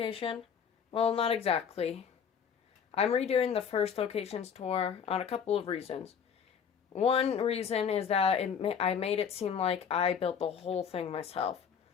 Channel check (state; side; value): quieter; right; 7.2 dB